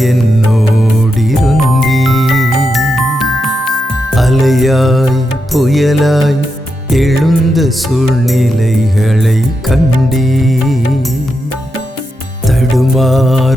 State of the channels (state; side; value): normal; both; correlation 0.86